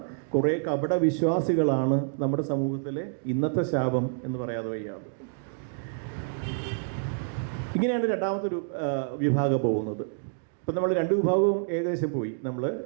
കുറേ കപട വിശ്വാസികളാണ് നമ്മുടെ സമൂഹത്തിലെ ഇന്നത്തെ ശാപം എന്ന് പറയാതെ വയ്യാതെ. ഇങ്ങനെയാണ് രണ്ടാമതൊരു വിഭാഗം പോകുന്നത്. ഇപ്പം നമ്മൾ രണ്ട് വിഭാഗവും ഏകദേശം പോയി. നമ്മൾ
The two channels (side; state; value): left; silent; digital silence